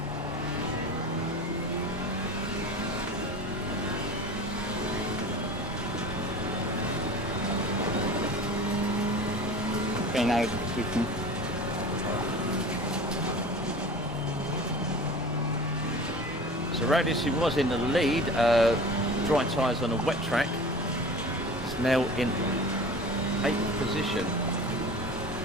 Okay, now it's switching. So Radis, who was in the lead, dry tyres on a wet track, is now in 8th position.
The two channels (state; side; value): normal; both; correlation 0.38